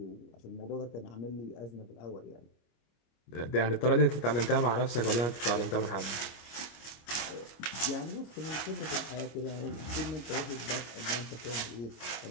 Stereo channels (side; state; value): right; late; 25 ms